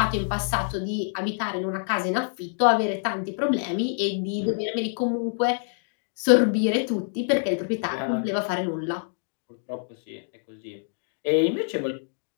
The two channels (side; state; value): right; silent; digital silence